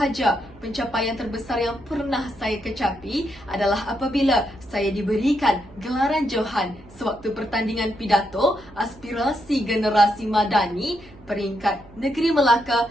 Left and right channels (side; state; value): right; noise; hum, 23 dB below the sound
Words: pencapaian terbesar yang pernah saya kecapi adalah apabila saya diberikan gelaran Johan sewaktu pertandingan pidato aspirasi generasi madani peringkat Negeri Melaka